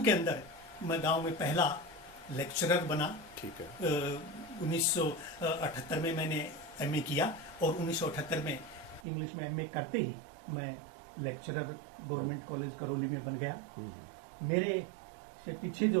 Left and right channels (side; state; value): left; drops out; at 9.1 s